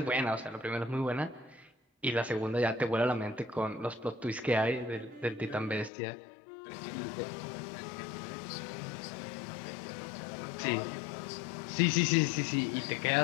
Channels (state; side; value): drops out; right; at 5.9 s